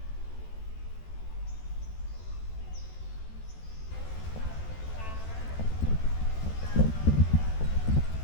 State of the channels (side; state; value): right; late; 14 ms